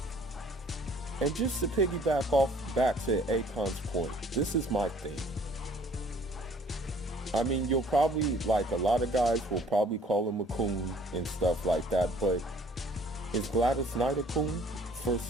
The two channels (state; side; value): normal; both; correlation 0.55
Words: And just to piggyback back to Akon's point, this is my thing. I mean, you'll probably, like, a lot of guys will probably call him a coon and stuff like that, but is Gladys Knight a coon for